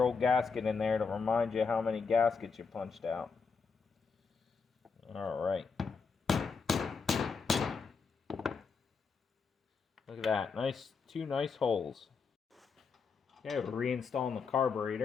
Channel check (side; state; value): right; quieter; 5.2 dB